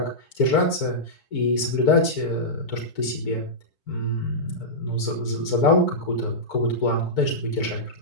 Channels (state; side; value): late; right; 4.5 ms